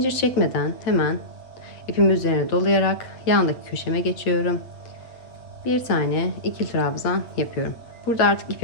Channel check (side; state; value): right; late; 8.1 ms